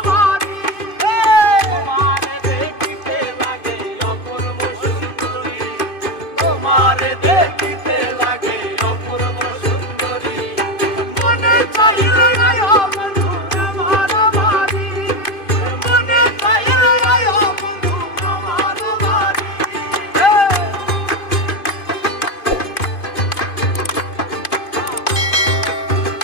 বাড়ি। তোমারে দেখিতে লাগে অপূর্ব সুন্দরী, তোমারে দেখিতে লাগে অপূর্ব সুন্দরী। মনে চাইলে আয়ো বন্ধু আমার বাড়ি, মনে চাইলে আয়ো বন্ধু আমার বাড়ি।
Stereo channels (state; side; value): late; right; 2.5 ms